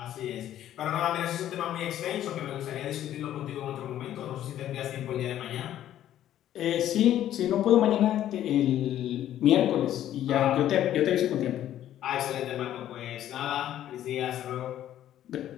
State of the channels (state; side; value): quieter; right; 11.9 dB